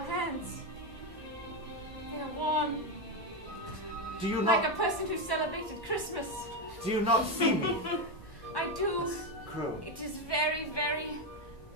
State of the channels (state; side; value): normal; both; correlation 0.08